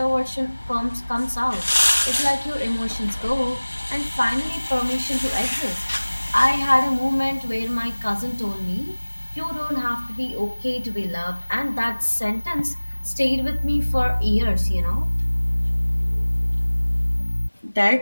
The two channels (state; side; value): inverted; both; correlation -1.00